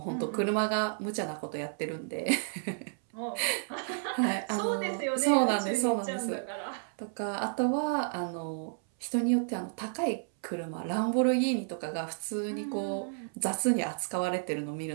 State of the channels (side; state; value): left; silent; 57 dB below the other